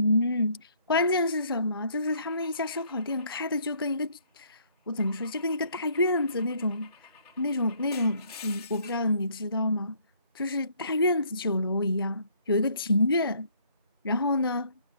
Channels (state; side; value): inverted; both; correlation -0.64